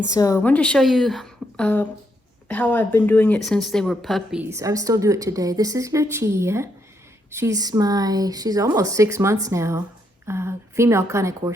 so I wanted to show you how I've been doing it since they were puppies. I still do it today. This is Lucia. She's almost 6 months now. Female Cane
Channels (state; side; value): normal; both; correlation 0.77